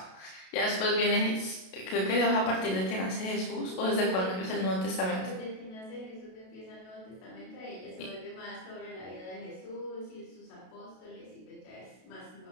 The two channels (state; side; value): late; right; 32 ms